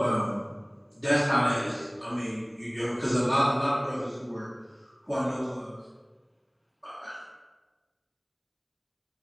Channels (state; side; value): identical; both; correlation 1.00